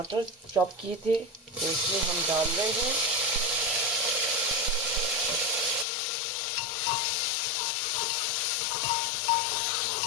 चॉप किए थे, तो इसमें हम डाल रहे हैं।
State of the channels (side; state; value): right; drops out; at 5.9 s